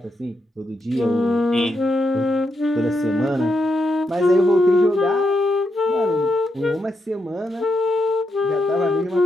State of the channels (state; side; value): normal; both; correlation 0.82